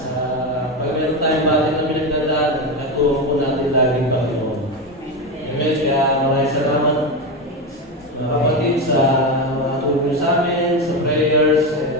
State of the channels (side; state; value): both; normal; correlation 0.15